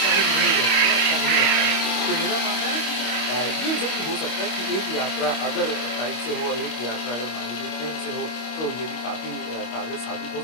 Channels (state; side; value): late; right; 25 ms